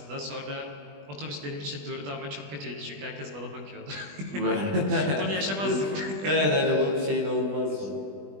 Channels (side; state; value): left; late; 20 ms